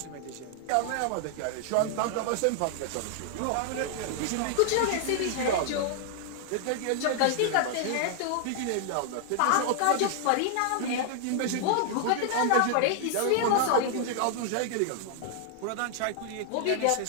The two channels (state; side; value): different; both; correlation 0.00